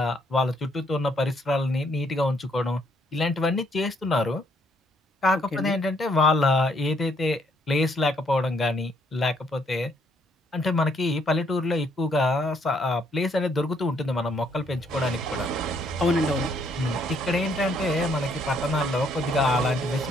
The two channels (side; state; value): both; normal; correlation 0.69